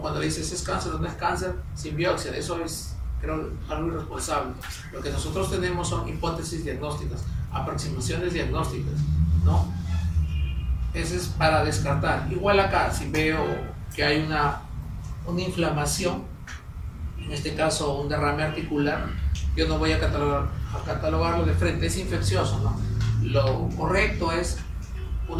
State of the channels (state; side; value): identical; both; correlation 1.00